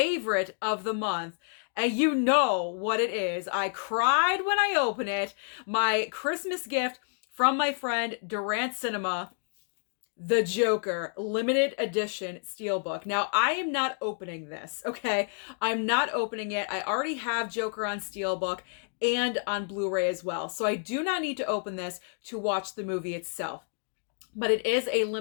of the month. And you know what it is. I cried when I opened it. My Christmas gift from my friend Durant Cinema, The Joker limited edition Steelbook. Now, I am not opening this, okay? I'm not opening it. I already have Joker on Steelbook and on Blu-ray as well. So I do not need to open this to watch the movie itself. But it is a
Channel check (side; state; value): right; silent; 58 dB below the other